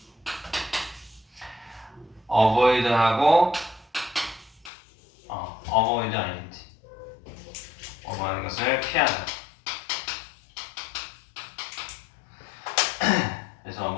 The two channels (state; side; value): drops out; right; at 4.7 s